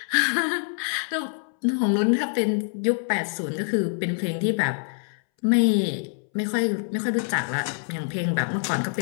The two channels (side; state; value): right; silent; 62 dB below the other